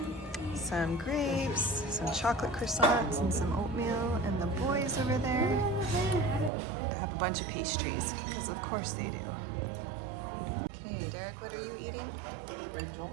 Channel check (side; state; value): left; drops out; at 6.5 s